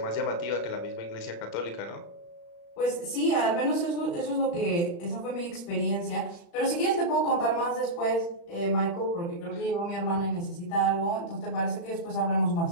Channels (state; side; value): late; right; 35 ms